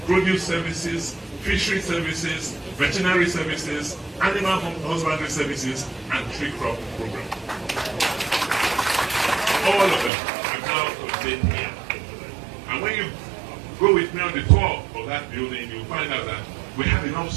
Produce Services, Fishery Services, Veterinary Services, Animal Husbandry Services, and Tree Crop Program. All of them are now contained here. And when you go with me on the tour of that building, you'll find out that we have enough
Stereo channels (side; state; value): left; drops out; at 10.1 s